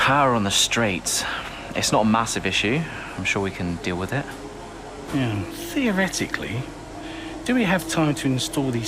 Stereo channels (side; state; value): both; identical; correlation 1.00